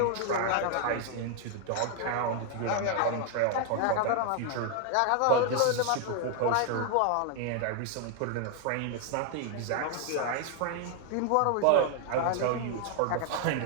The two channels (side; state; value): both; different; correlation 0.00